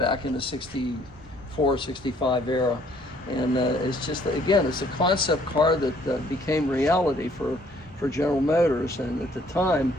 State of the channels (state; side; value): normal; both; correlation 0.62